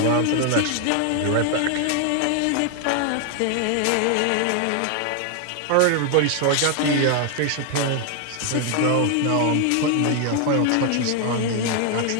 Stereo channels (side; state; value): both; different; correlation 0.00